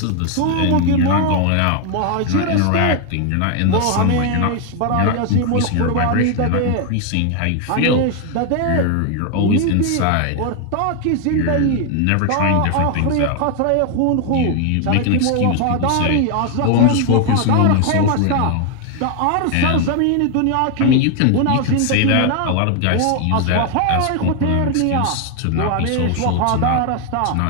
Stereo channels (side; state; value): both; different; correlation 0.00